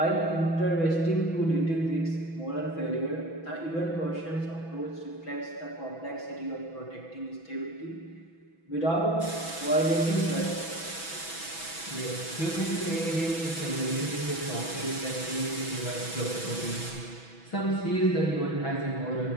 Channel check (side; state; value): right; late; 6.1 ms